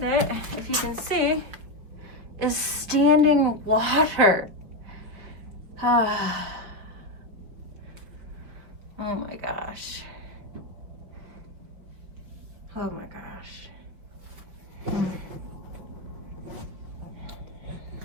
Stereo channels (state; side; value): late; left; 5.3 ms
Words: it, if you can see, is standing water. Oh my gosh. Oh my gosh.